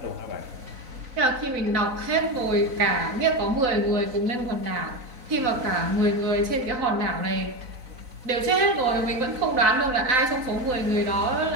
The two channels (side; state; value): left; late; 4.0 ms